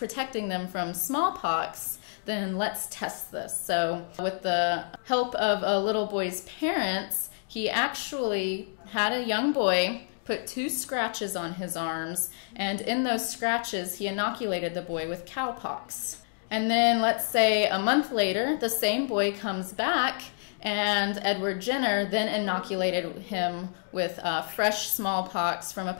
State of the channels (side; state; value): right; silent; digital silence